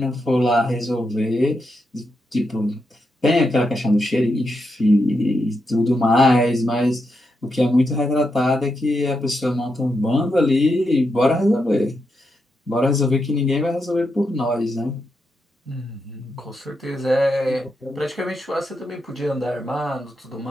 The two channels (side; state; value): both; normal; correlation 0.84